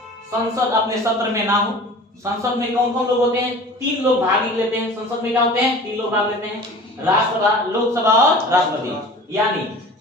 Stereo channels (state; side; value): normal; both; correlation 0.41